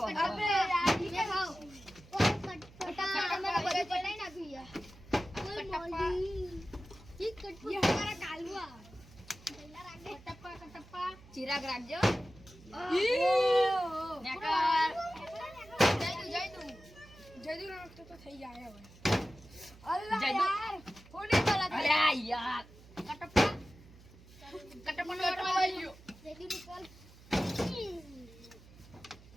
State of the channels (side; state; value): right; noise; hum, 22 dB below the sound